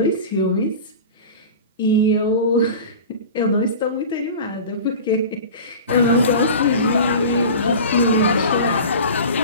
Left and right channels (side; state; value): both; inverted; correlation -0.34